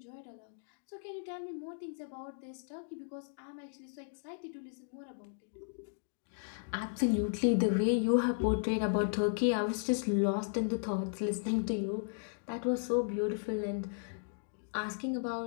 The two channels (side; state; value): right; silent; digital silence